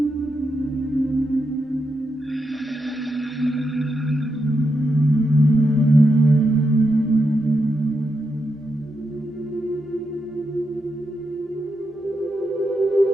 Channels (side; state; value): both; normal; correlation 0.84